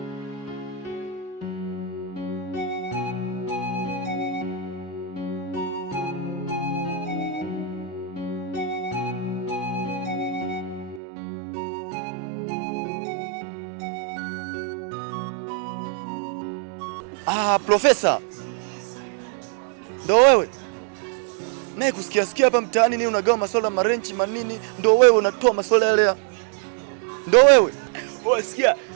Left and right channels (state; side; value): drops out; left; at 11.0 s